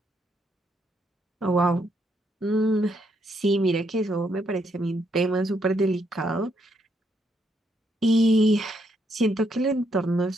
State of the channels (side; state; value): both; normal; correlation 0.75